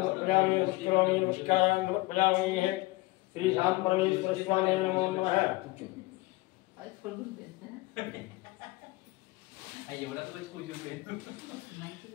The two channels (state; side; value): quieter; right; 21.1 dB